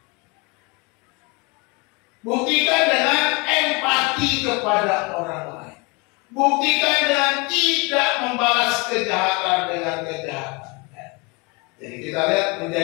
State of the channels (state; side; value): quieter; right; 28.4 dB